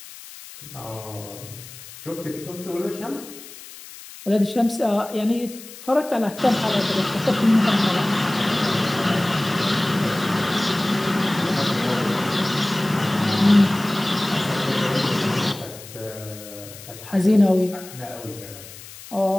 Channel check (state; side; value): noise; left; hiss, 16 dB below the sound